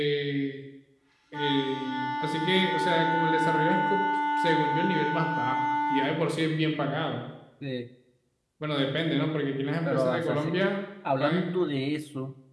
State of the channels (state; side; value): identical; both; correlation 1.00